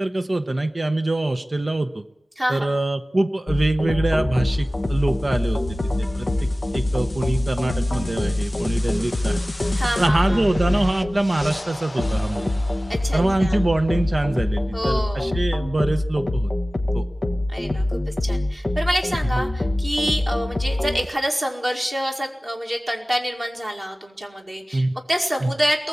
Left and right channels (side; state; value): both; normal; correlation 0.97